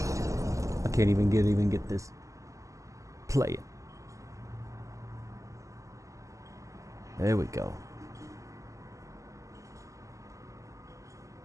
can't even get this. Play it. There we go.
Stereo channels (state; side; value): late; left; 0.16 ms